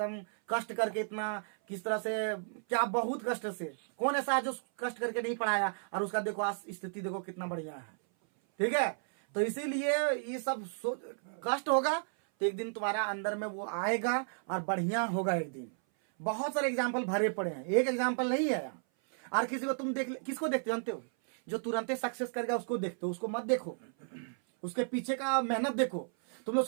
कष्ट करके इतना, किस तरह से क्या बहुत कष्ट से, कौन ऐसा है जो कष्ट करके नहीं पढ़ाया, और उसका देखो आज स्थिति देखो कितना बढ़िया है। ठीक है, तो इसीलिए ये सब कष्ट होगा तो एक दिन तुम्हारा अंदर में वो आएगा और बढ़िया होगा एक दिन। बहुत सारे एग्जाम्पल भरे पड़े हैं, एक एग्जाम्पल नहीं है। और किसी को तुम किसको देखते जानते हो? जो तुरंत सक्सेस कर गया उसको देखते हो, उसको मत देखो, उसके पीछे का मेहनत देखो। तुम लोग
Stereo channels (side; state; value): left; silent; 55 dB below the other